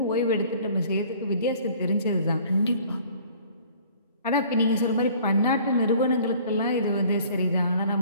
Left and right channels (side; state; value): both; inverted; correlation -0.53